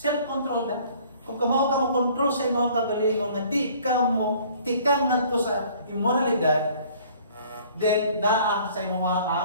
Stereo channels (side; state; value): both; inverted; correlation -0.55